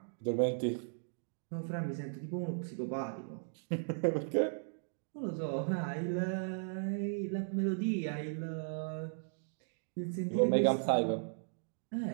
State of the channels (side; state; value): left; silent; digital silence